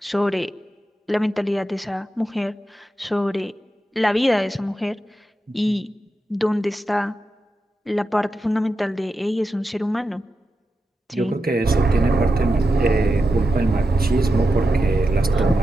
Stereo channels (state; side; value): normal; both; correlation 0.89